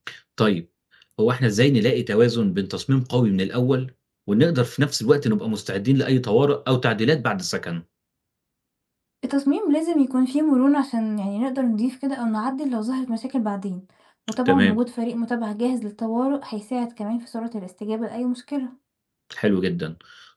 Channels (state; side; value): identical; both; correlation 1.00